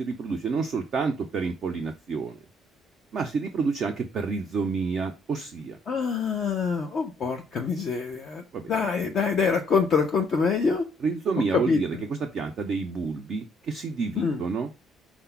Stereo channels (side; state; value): both; normal; correlation 0.66